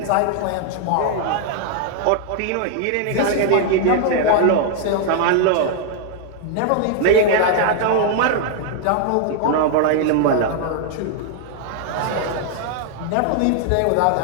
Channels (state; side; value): different; both; correlation 0.00